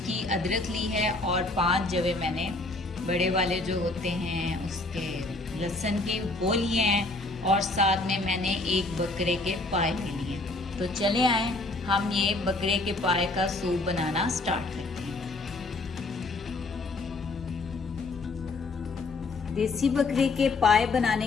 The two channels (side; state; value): right; quieter; 3.1 dB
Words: अदरक ली है और 5 जवे मैंने बड़े वाले जो होते हैं उसके लहसुन के वो लिए हैं, और साथ में मैंने 1 बकरे के पाए ले लिए। तो चले आए हम ये बकरे के पाए का सूप बनाना स्टार्ट करते हैं। देसी बकरे के पाए बनाने